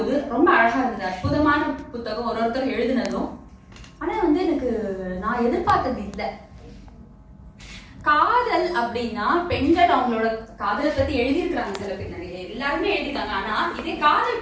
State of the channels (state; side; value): identical; both; correlation 1.00